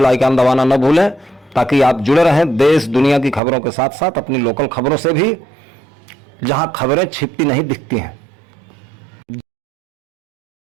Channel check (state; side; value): drops out; left; at 3.4 s